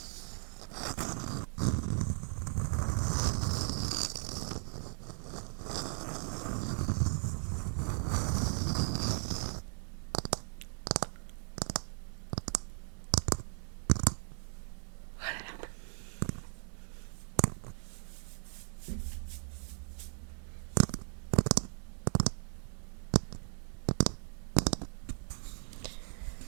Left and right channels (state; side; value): silent; left; 53 dB below the other